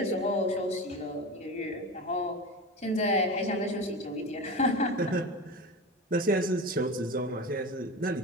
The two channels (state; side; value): normal; both; correlation 0.27